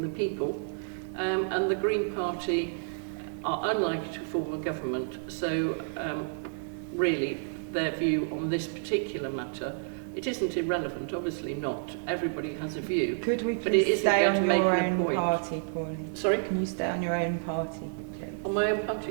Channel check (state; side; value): silent; left; 58 dB below the other